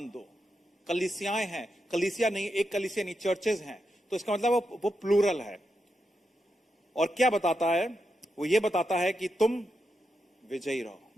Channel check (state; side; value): normal; both; correlation 0.85